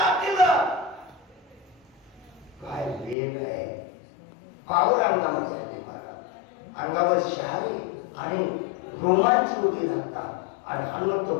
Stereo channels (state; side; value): drops out; right; at 3.2 s